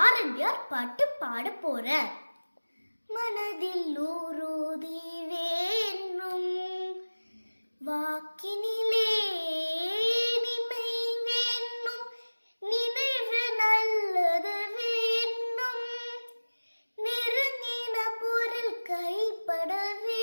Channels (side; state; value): both; inverted; correlation -1.00